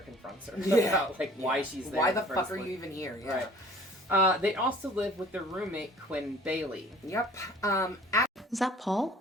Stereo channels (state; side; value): normal; both; correlation 0.50